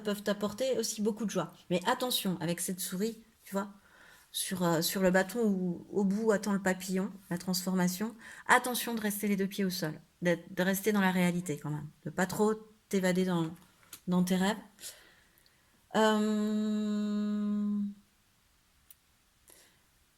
peuvent t'apporter aussi beaucoup de joie. Mais attention, avec cette souris, tu vois, sur le bâton où au bout attend le papillon, la transformation, attention de rester les deux pieds au sol, de rester dans la réalité quand même, de pas trop t'évader dans tes rêves.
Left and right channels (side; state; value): both; identical; correlation 1.00